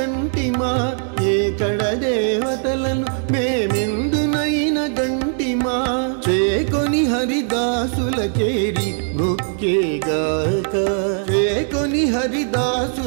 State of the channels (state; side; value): silent; left; 66 dB below the other